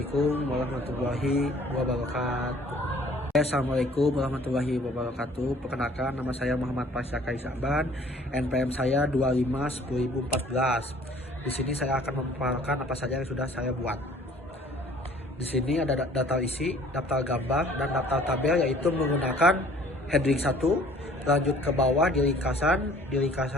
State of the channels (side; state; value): both; normal; correlation 0.54